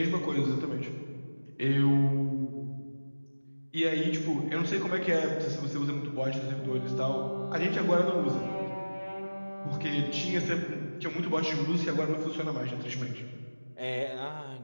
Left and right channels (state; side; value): inverted; both; correlation -1.00